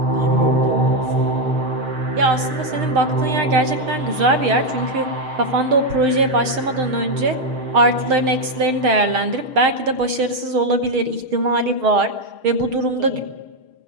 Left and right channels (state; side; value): late; left; 6.5 ms